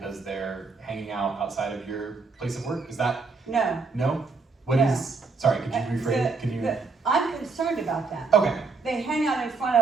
they're hanging out outside of your place of work? Is that? No. No? What No. is, sorry, could you rephrase it? Can you? I'm concerned about that. Okay. They hang out in front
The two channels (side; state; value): left; quieter; 4.3 dB